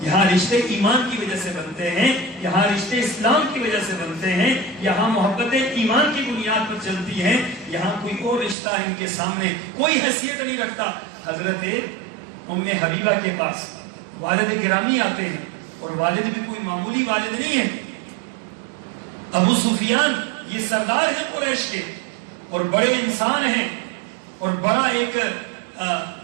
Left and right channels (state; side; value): drops out; left; at 8.6 s